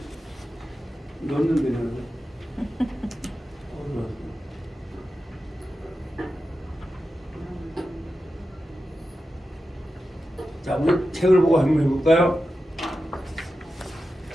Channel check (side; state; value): both; normal; correlation 0.91